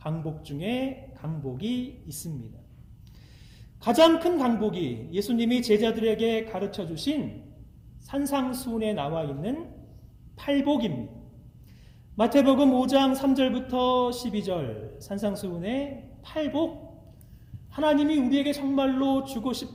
중에 강복이 있습니다. 가장 큰 강복이 예수님이 제자들에게 가르쳐 주신 산상수훈에 나와 있는 팔복입니다. 마태복음 5장 3절부터 12절 산상수훈의 팔복, 하나님이 우리에게 정말로 주고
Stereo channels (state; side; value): identical; both; correlation 1.00